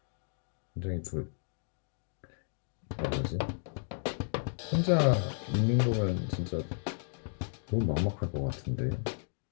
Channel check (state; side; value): silent; right; digital silence